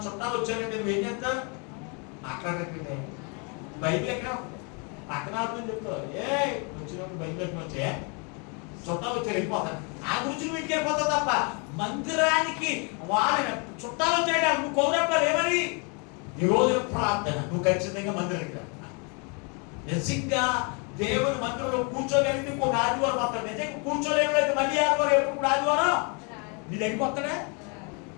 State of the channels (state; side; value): quieter; right; 34.5 dB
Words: చుట్టాలు వచ్చారంటే నువ్వు ఏం చేస్తావు? మాట్లాడట్లే. బైబిల్ ఎక్కడ పక్కన ఆడుతుంది చెప్తావు, ఏ వచ్చినప్పుడు బైబిల్ ఎక్కడ వచ్చాయా, చుట్టాలు వచ్చారు వెళ్ళిపోతారు. ఆ గురించి నువ్వు ఇంటికి వెళ్ళిపోతావు తప్ప మందిరానికి వాళ్ళ చుట్టాలు వచ్చాడు నువ్వు కౌరప్పాలు ఏమని ఈ రోజు ప్రార్థన నువ్వు ఖచ్చితంగా మందిరానికి రా. నిజంగా దేవుని మందిరంలో కూర్చోగలిగితే ఇంకొక ఆదివారం వస్తాడు. నిజంగా కూర్చోలేకపోతే మళ్ళీ ఆదివారం ఎప్పుడు ఆదివారం నీ దగ్గరికి వస్తాడే